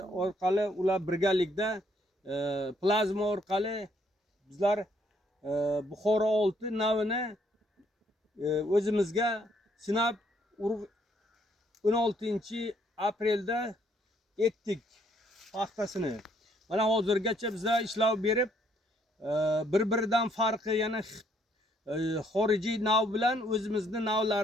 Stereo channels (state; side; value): normal; both; correlation 0.68